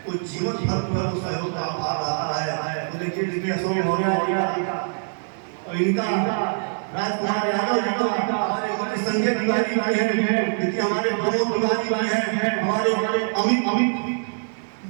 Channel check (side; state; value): left; silent; digital silence